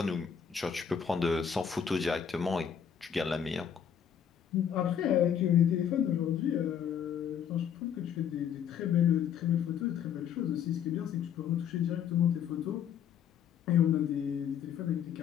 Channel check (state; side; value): quieter; right; 8.3 dB